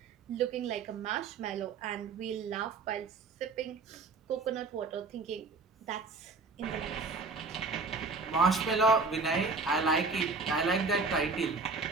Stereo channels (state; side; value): quieter; left; 4.2 dB